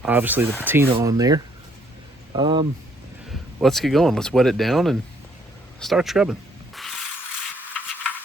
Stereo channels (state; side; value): normal; both; correlation 0.66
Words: obviously, the patina on there. Let's get going. Let's wet it down and start scrubbing.